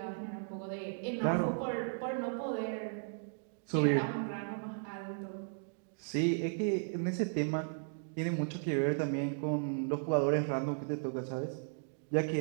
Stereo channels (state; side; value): silent; left; digital silence